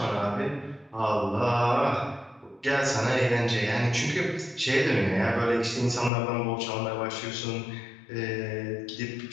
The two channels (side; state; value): right; drops out; at 6.1 s